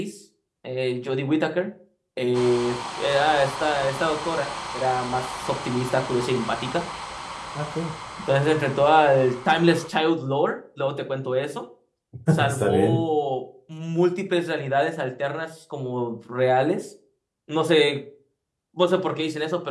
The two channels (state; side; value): identical; both; correlation 1.00